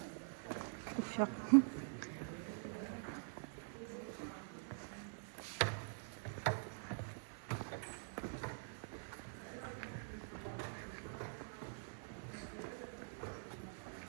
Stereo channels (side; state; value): left; silent; digital silence